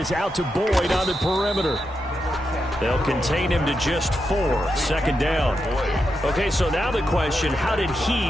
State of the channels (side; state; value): both; normal; correlation 0.86